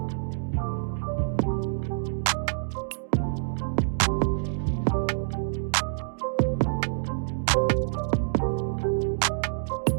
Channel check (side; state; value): left; silent; digital silence